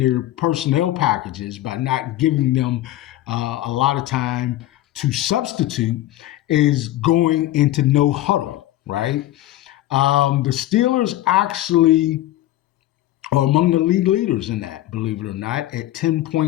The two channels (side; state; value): right; quieter; 14.9 dB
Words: personnel packages by not giving them a lot of time to substitute is going into no huddle, right? The Steelers actually are among the league leaders in that, believe it or not, at